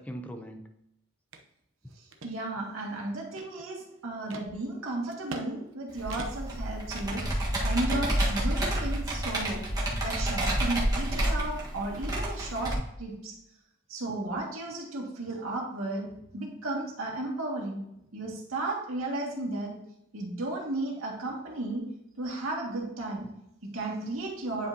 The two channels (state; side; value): normal; both; correlation 0.54